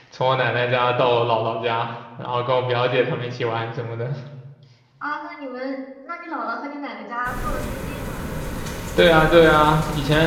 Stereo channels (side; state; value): both; identical; correlation 1.00